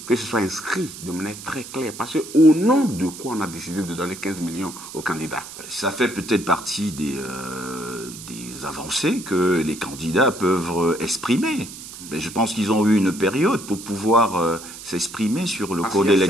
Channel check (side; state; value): right; noise; hiss, 13 dB below the sound